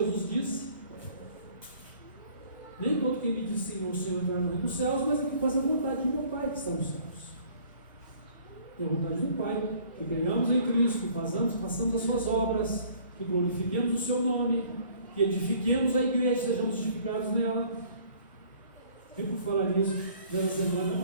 disse. Nem todo quem me diz Senhor, Senhor entrar no reino dos céus, mas é que faz a vontade do meu Pai que está nos céus. É a vontade do Pai, que creiamos em Cristo, que façamos as suas obras, que glorifiquemos o seu nome, que edifiquemos a igreja, sejamos justificados nela. E por falar nisso, nessa semana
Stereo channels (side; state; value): both; inverted; correlation -0.56